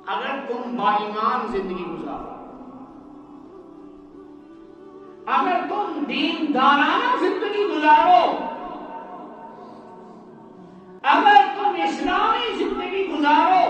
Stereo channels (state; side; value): identical; both; correlation 1.00